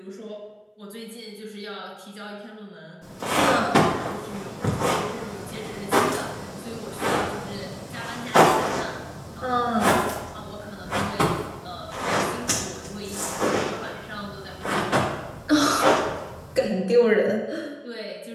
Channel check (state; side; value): identical; both; correlation 1.00